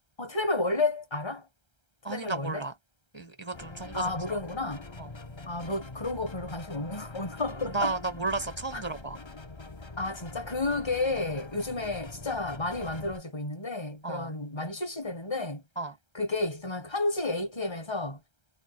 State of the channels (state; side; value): late; right; 1.3 ms